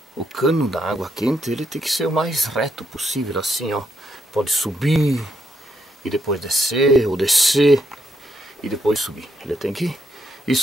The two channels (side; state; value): both; normal; correlation 0.77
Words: O cano da água quente, ele tem que ser o mais reto possível, assim, ó. Pode subir e depois descer, ou descer e depois subir. Ele tem que ir